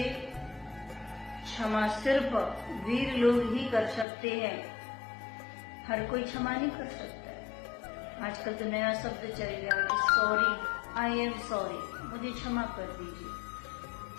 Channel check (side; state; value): right; drops out; at 4.0 s